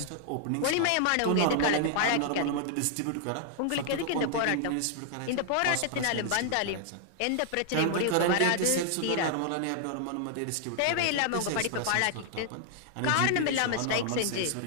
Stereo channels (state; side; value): different; both; correlation 0.00